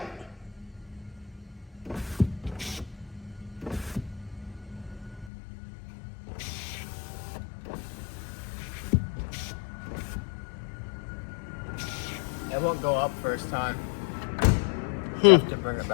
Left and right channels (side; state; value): right; drops out; at 5.3 s